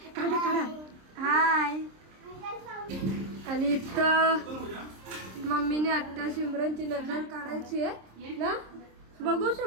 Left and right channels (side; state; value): left; late; 26 ms